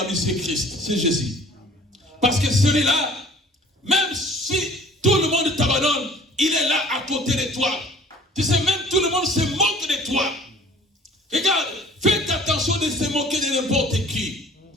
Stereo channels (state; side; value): normal; both; correlation 0.50